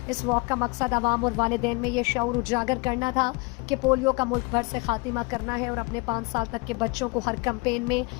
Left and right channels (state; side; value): quieter; right; 28.7 dB